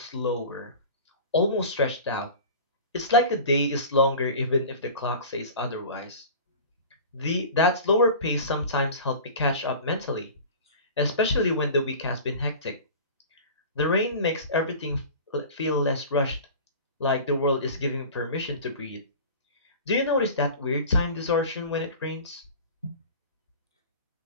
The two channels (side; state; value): both; inverted; correlation -0.37